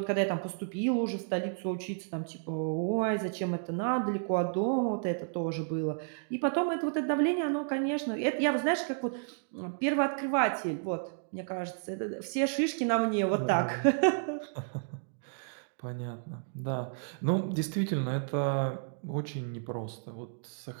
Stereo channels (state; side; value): silent; left; digital silence